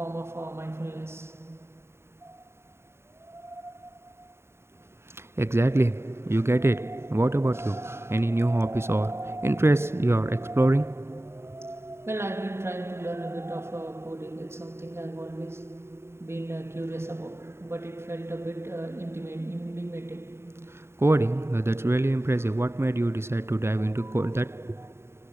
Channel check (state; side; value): late; left; 0.12 ms